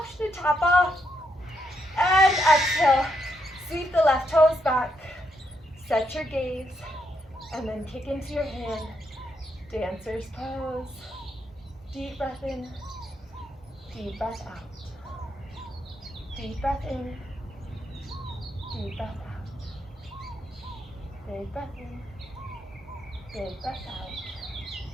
to tap off. And exhale, sweep the left toes back. Set your gaze, and then kick into your hand. Dancer's pose. Deep breath in, deep breath out. Deep breath in, deep breath out. Big breath in, big breath out.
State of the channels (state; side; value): normal; both; correlation 0.79